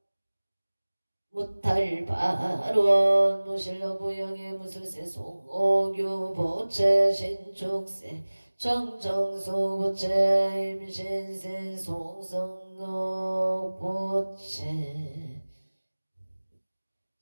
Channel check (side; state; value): both; inverted; correlation -1.00